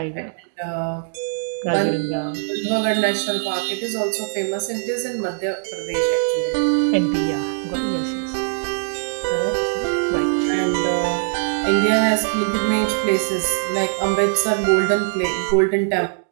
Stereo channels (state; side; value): silent; left; digital silence